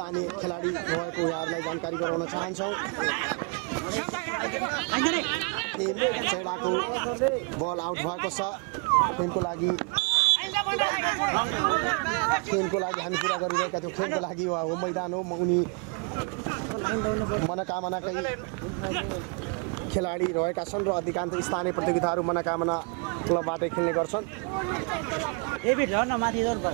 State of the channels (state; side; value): quieter; left; 33.9 dB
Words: खेलाडी रहेको यहाँहरूलाई जानकारी गराउन चाहन्छौँ। खेम चैडाको बल आउट भएको छ। खेमको लागि हामी कुरा गरिरहेका थियौँ। खेमको लागि हो मैदान हो। उनी मनोकामनाकै खेलाडी रहेका छन् र अधिकांश स्थानीय प्रतियोगिताहरू मनोकामना क्लबबाटै खेल्ने गर्छन्।